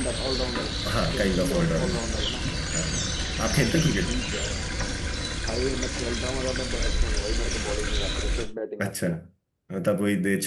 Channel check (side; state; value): both; identical; correlation 1.00